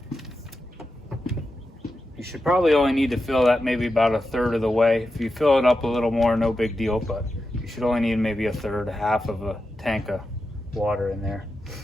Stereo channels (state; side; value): normal; both; correlation 0.89